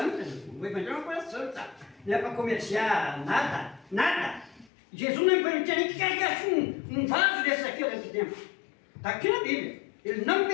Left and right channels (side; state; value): right; drops out; at 4.7 s